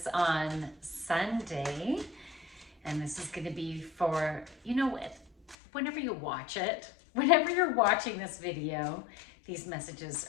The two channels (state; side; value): drops out; right; at 5.6 s